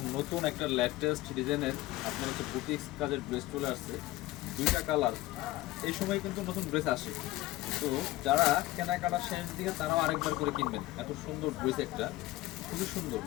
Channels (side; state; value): right; quieter; 17.7 dB